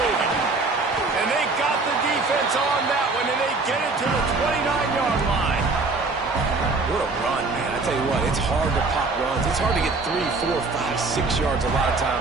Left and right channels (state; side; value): quieter; left; 3.7 dB